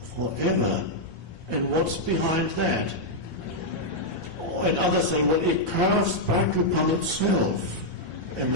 Forever. And what's behind that? And others say, well, it curves back upon itself.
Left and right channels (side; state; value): left; late; 1.2 ms